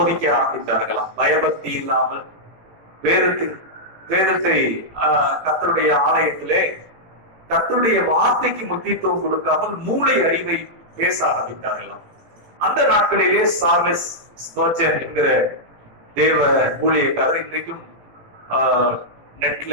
ஆரம்பித்தார்களாம். பயபக்தி இல்லாமல் வேதத்தை கர்த்தருடைய ஆலயத்திலே கர்த்தருடைய வார்த்தைக்கு முக்கியத்துவம் கொடுக்காமல் மூளை அறிவை பேச ஆரம்பித்தார்களாம். அந்த நாட்களிலே சார்லஸ் ஸ்பர்ஜன் என்கிற தேவ ஊழியக்காரர் இன்றைக்கும்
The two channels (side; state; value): left; late; 18 ms